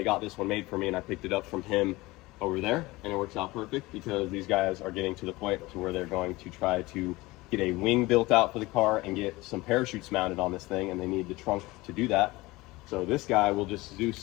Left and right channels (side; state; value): right; quieter; 20.9 dB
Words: got this one made for me, and I picked it up from him over there, and it works out perfect because these guys are getting to the point to where they're going to try to get a wing built out for the car and get some parachutes mounted on this thing, and they need the trunk to do that. So this guy will just